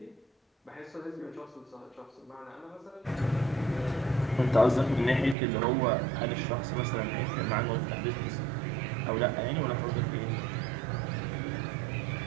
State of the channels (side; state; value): left; drops out; at 5.4 s